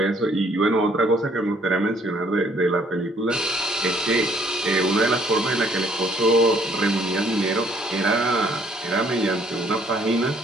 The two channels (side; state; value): both; normal; correlation 0.63